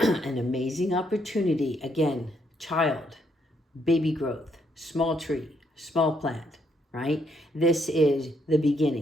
amazing opportunity. Again, child, baby growth, small tree, small plant, right? This is the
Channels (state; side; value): normal; both; correlation 0.74